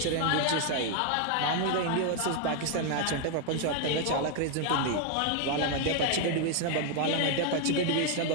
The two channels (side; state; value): both; different; correlation 0.00